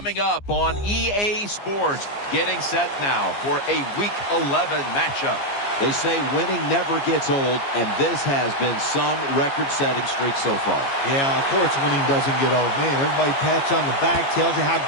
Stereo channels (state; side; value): late; right; 15 ms